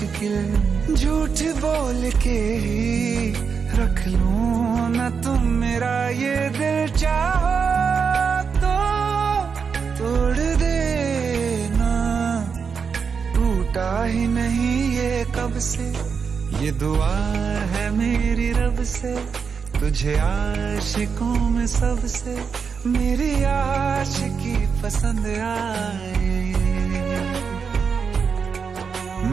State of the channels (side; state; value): left; quieter; 5.9 dB